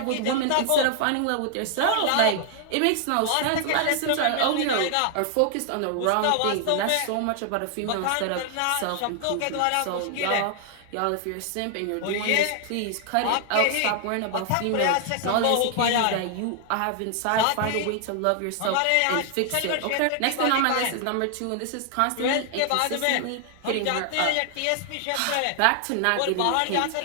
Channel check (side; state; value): both; different; correlation 0.00